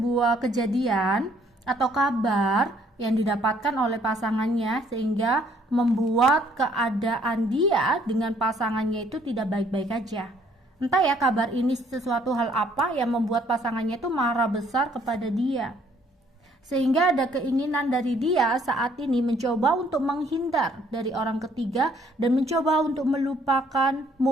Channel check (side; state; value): both; normal; correlation 0.63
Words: kejadian atau kabar yang didapatkan oleh pasangannya sehingga membuat keadaan dia dengan pasangannya itu tidak baik-baik aja. Entah ya kabar ini sesuatu hal apa yang membuat pasangannya itu marah besar kepada dia. Sehingga ada keinginan dari dia saat ini mencoba untuk menghindar dari orang ketiga dan mencoba untuk melupakan,